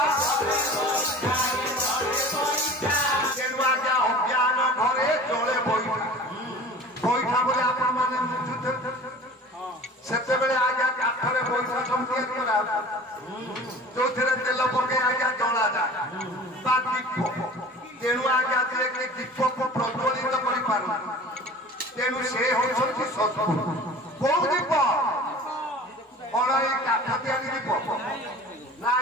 ତେଣୁ ଆଜ୍ଞା ଅଜ୍ଞାନ ଘରେ ଚଳେ ବଇଠା। ବଇଠା ବୋଲି ଆପଣ ମାନେ ବୁଝୁଥିବେ। ସେତେବେଳେ ଆଜ୍ଞା କାଠରେ ବଇଠା ସବୁ ତିଆରି କରା, ଯୋଉଥିରେ ତେଲ ପକେଇ ଆଜ୍ଞା ଜଳାଯାଏ ବା ଦୀପ। ତେଣୁ ଆଜ୍ଞା ଯିଏକି ଦୀପକୁ ପ୍ରଜ୍ୱଳିତ କରିପାରୁ, ତେଣୁ ସେ ହେଉଛନ୍ତି ସଦଗୁରୁ। କୋଉ ଦୀପ? କଣ ଏଇ କାଠ ତିଆରି ଦୀପ ନା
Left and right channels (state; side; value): normal; both; correlation 0.41